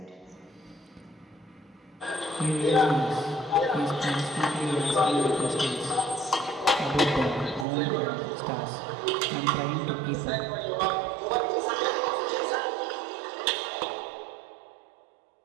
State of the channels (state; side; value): drops out; left; at 7.7 s